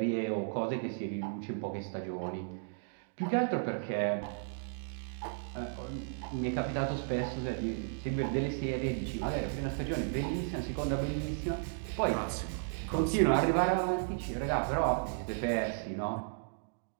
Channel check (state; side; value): silent; left; digital silence